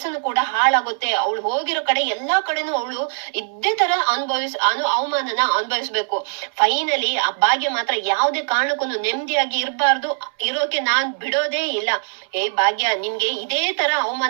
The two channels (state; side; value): silent; left; 65 dB below the other